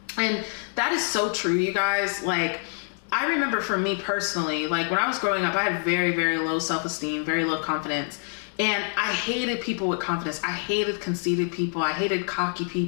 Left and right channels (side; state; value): right; silent; 59 dB below the other